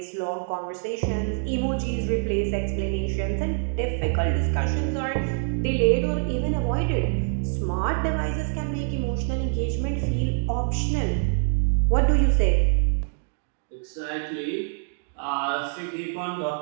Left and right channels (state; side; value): silent; left; 62 dB below the other